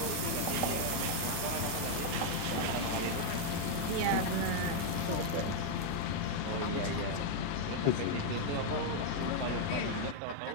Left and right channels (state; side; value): different; both; correlation 0.00